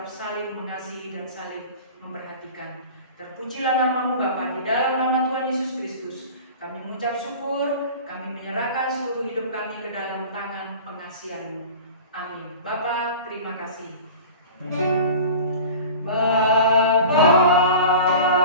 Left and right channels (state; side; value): inverted; both; correlation -0.38